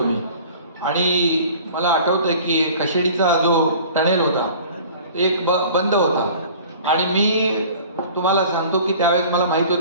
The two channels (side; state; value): both; inverted; correlation -0.46